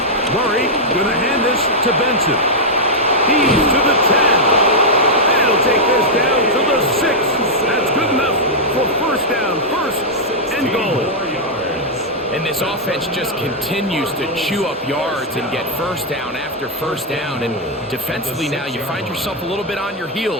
Murray going to hand this to Benson. He's to the 10. And he'll take this down to the 6. That's good enough for first down, 1st and goal. And this offense just continues to chew up yards and get first down after first down. And defensively now, you find yourself a little bit on your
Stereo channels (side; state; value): both; normal; correlation -0.04